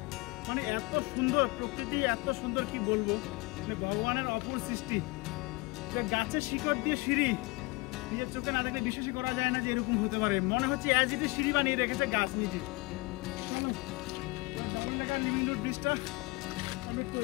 মানে এত সুন্দর প্রকৃতি, এত সুন্দর কি বলবো, মানে ভগবানের অপূর্ব সৃষ্টি। গাছের শিকড় দিয়ে সিঁড়ি, নিজের চোখে না দেখলে বিশ্বাসই করা যায় না যে এরকম হতে পারে। মনে হচ্ছে অ্যাজ ইট ইজ সিঁড়ি বানিয়ে রেখেছে গাছ নিজে। ডাবল ডেকার লিভিং রুট ব্রিজটা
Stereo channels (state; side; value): quieter; right; 24.3 dB